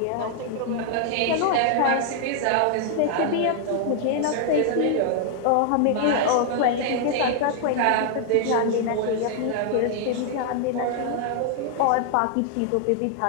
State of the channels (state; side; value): different; both; correlation -0.01